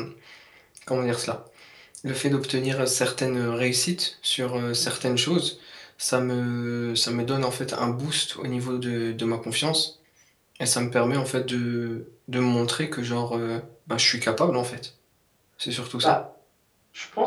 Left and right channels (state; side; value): identical; both; correlation 1.00